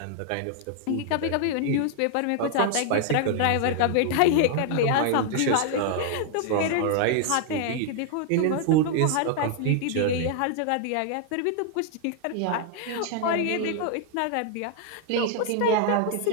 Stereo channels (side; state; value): both; different; correlation 0.00